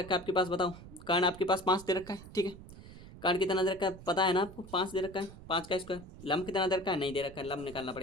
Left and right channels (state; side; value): noise; right; rumble, 16 dB below the sound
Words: है आपके पास बताओ, कर्ण आपके पास 5 दे रखा है। ठीक है, कर्ण कितना दे रखा है पता है ना आपको, 5 दे रखा है, 5 का स्क्वायर। लंब कितना दे रखा है, नहीं दे रखा है, लंब निकालना